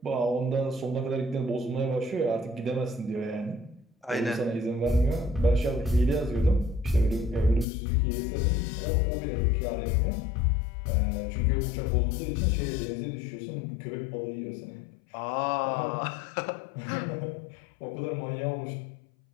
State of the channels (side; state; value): right; drops out; at 7.7 s